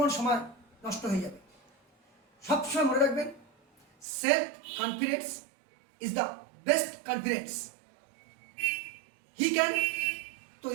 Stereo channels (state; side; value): drops out; left; at 4.0 s